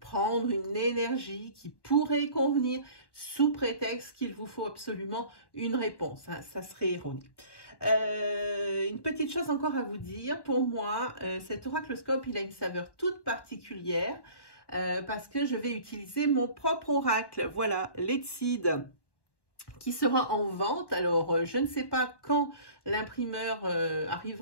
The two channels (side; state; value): right; late; 1.1 ms